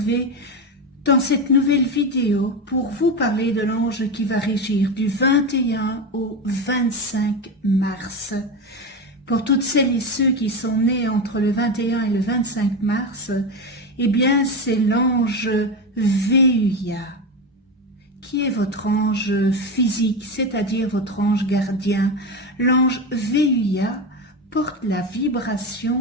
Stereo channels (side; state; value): both; normal; correlation 0.17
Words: dans cette nouvelle vidéo pour vous parler de l'ange qui va régir du 21 au 25 mars. Pour toutes celles et ceux qui sont nés entre le 21 et le 25 mars, eh bien c'est l'ange Véuya, qui est votre ange physique, c'est-à-dire votre ange gardien. L'ange Véuya porte la